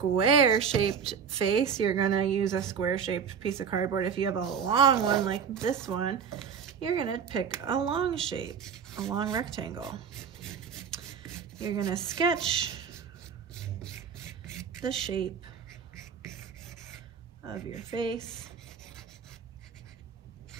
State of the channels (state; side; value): quieter; left; 6.9 dB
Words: shaped face, you're gonna use a square shaped piece of cardboard. If you have a long one like this one, you're gonna pick a long shape, a long rectangle. You're gonna sketch the shape of your face